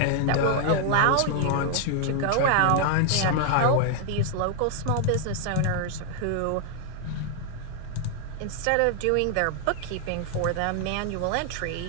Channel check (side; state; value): both; different; correlation 0.00